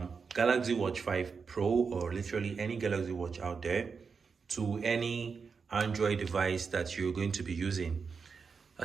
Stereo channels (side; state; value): left; quieter; 5.4 dB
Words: Watch 5 Pro or literally any Galaxy Watch out there to any Android device that you're going to be using.